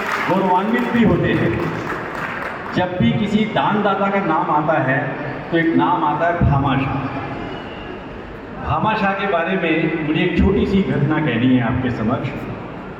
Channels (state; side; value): identical; both; correlation 1.00